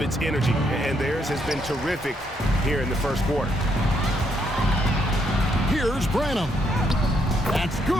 its energy, and theirs has been terrific here in the first quarter. Here's Branham. That's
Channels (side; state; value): both; normal; correlation 0.74